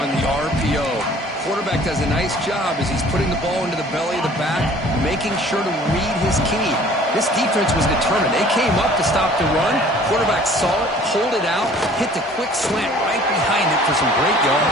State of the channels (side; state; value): both; normal; correlation 0.52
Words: the RPO. Quarterback does a nice job as he's putting the ball into the belly of the back, making sure to read his key. This defense was determined. They came up to stop the run. Quarterback saw it, pulled it out, hit the quick slant right behind it for some great